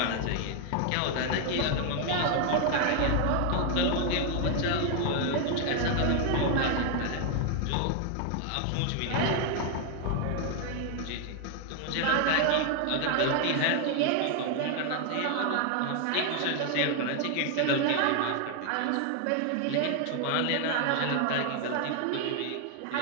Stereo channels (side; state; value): both; different; correlation 0.00